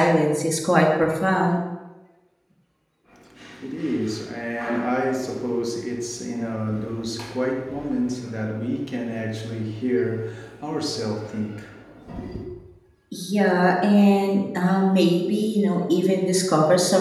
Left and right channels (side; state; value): both; identical; correlation 1.00